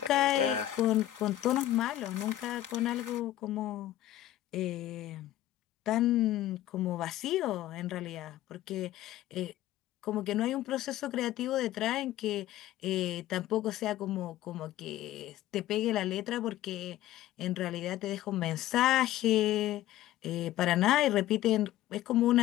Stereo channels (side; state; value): right; quieter; 13.9 dB